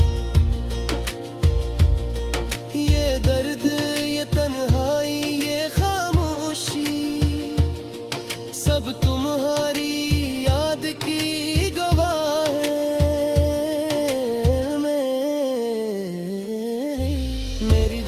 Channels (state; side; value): identical; both; correlation 1.00